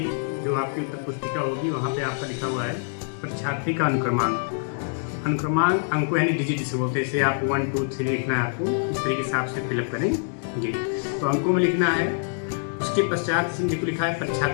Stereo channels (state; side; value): silent; right; digital silence